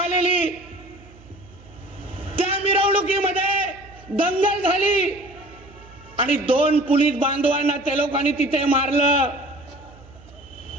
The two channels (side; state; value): right; noise; hum, 23 dB below the sound